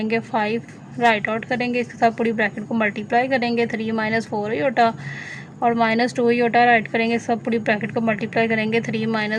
5 राइट आउट करेंगे, इसके साथ पूरी ब्रैकेट को मल्टीप्लाई करेंगे, 3 माइनस 4 योटा और -2 योटा राइट करेंगे, सब पूरी ब्रैकेट को मल्टीप्लाई करेंगे 3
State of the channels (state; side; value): identical; both; correlation 1.00